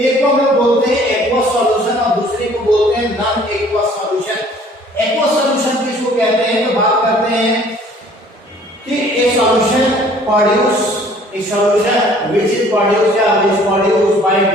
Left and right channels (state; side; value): normal; both; correlation 0.54